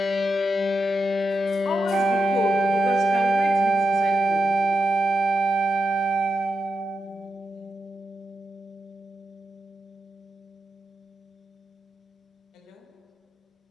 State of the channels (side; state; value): both; normal; correlation 0.87